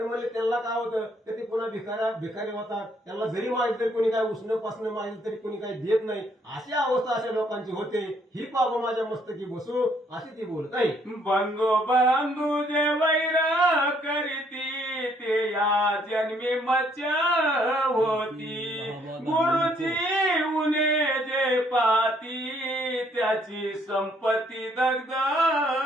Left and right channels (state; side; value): normal; both; correlation 0.67